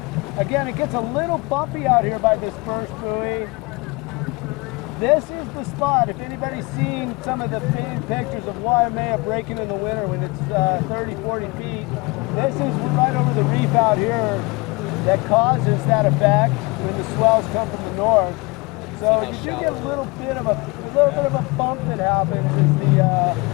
Again, it gets a little bumpy out here by this first buoy. This is the spot. If anybody's seen some of the famed pictures of Waimea breaking in the winter when it's 30, 40 feet, this is right over the reef out here that causes that effect when the swells come from the north. So you should get a little bit of a bump that happens as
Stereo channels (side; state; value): right; quieter; 26.5 dB